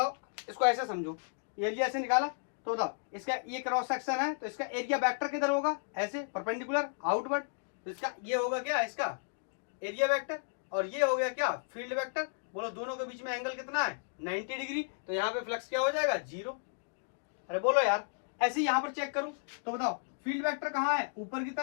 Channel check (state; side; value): silent; right; digital silence